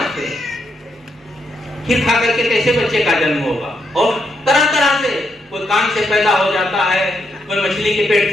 हैं। खीर खा करके कैसे बच्चे का जन्म होगा? और तरह तरह से, कोई कान से पैदा हो जाता है, कोई मछली के पेट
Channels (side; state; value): both; normal; correlation 0.79